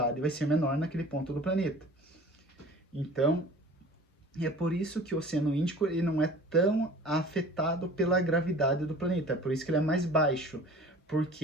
vai ser menor naquele ponto do planeta. Então, é por isso que o Oceano Índico ele não é tão afetado pela gravidade do planeta, por isso que ele é mais baixo,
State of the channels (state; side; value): normal; both; correlation 0.44